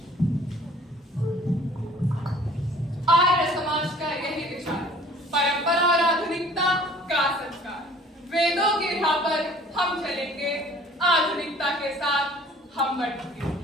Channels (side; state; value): both; normal; correlation 0.52